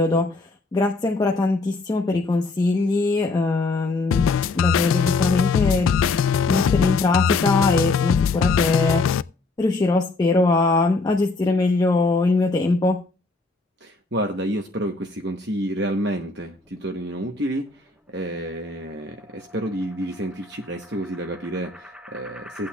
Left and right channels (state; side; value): quieter; right; 3.5 dB